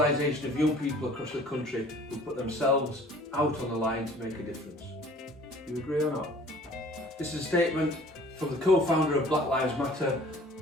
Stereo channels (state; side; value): normal; both; correlation 0.51